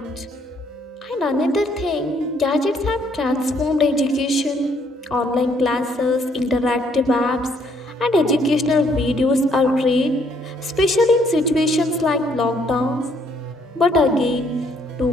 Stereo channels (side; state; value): both; normal; correlation 0.67